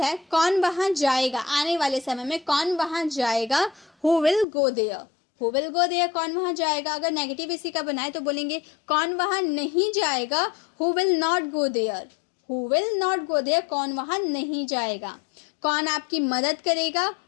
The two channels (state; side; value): drops out; right; at 4.5 s